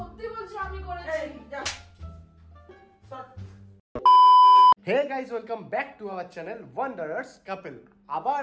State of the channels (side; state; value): both; identical; correlation 1.00